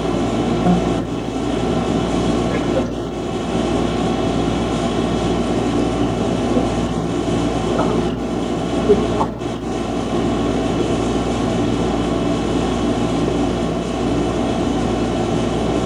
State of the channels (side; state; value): both; identical; correlation 1.00